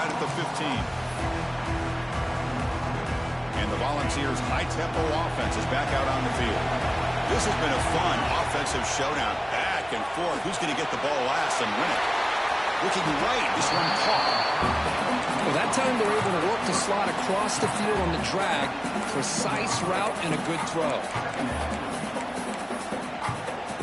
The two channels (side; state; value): both; identical; correlation 1.00